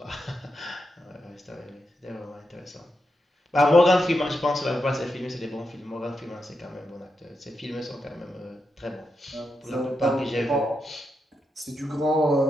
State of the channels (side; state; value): both; normal; correlation 0.85